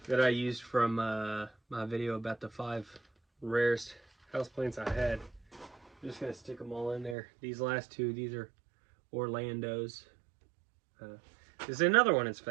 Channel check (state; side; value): drops out; left; at 7.2 s